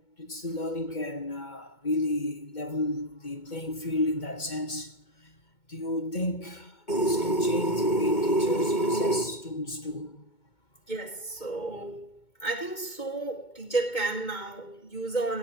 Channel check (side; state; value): right; late; 2.2 ms